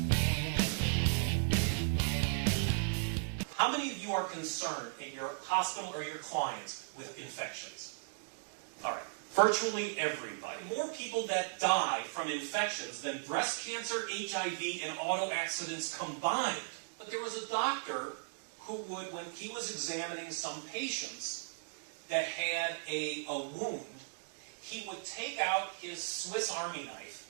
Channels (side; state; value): left; silent; digital silence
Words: How many of you are concerned in your hospital or your clients with infections? All right, virtually everybody. More people that die from infections than breast cancer, HIV, and auto accidents combined. But there was a doctor who would, when he was examining some patients that had a wound, he would take out his Swiss Army